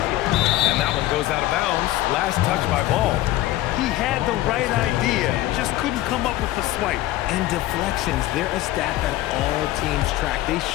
And that one goes out of bounds. Last touch by Ball. He had the right idea, just couldn't come up with the swipe. And deflections, they're a stat that all teams track. They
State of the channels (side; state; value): right; quieter; 15.8 dB